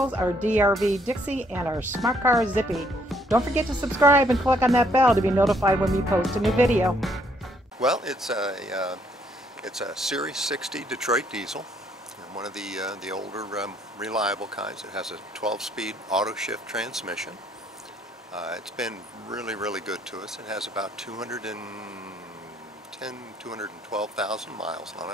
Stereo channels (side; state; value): both; normal; correlation 0.67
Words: our DRV Dixie, and our smart car Zippy. Don't forget to subscribe and click on that bell to be notified when we post a new video. Well, it's a Series 60 Detroit diesel, and one of the older reliable kinds. It has a 12-speed auto shift transmission. It's been really good to us. It has about 212,000 miles on